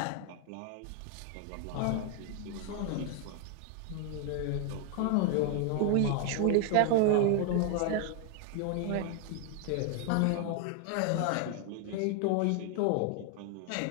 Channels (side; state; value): both; different; correlation 0.00